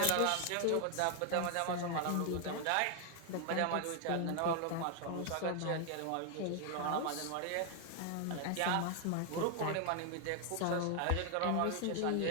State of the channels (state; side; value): different; both; correlation 0.00